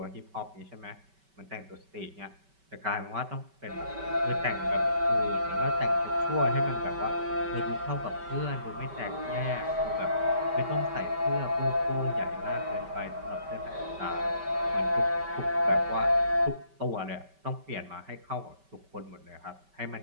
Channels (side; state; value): left; late; 5.2 ms